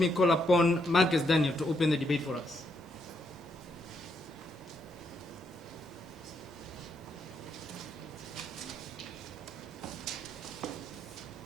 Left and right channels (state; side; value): normal; both; correlation 0.77